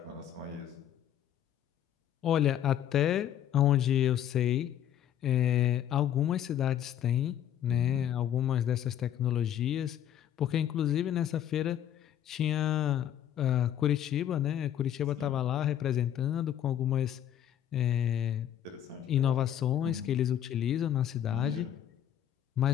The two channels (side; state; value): right; quieter; 10.6 dB